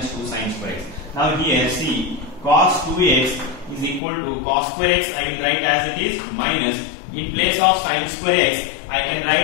2 sin square x. Now here see, cos 2x is equal to cos square x I will write as it is minus, in place of sin square x I can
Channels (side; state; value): right; drops out; at 4.0 s